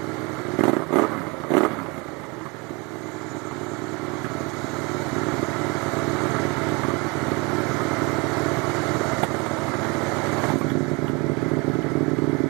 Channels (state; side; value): quieter; left; 26.7 dB